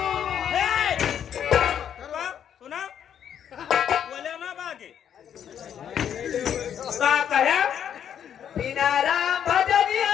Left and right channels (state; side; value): quieter; right; 9.1 dB